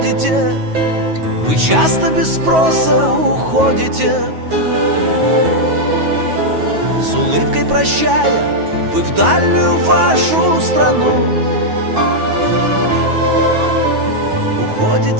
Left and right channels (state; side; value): late; left; 9.3 ms